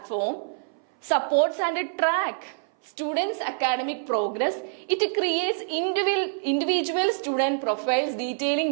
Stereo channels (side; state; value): left; silent; 59 dB below the other